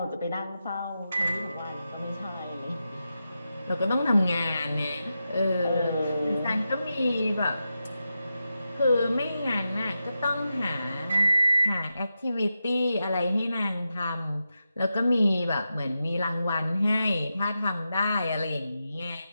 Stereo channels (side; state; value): both; inverted; correlation -0.89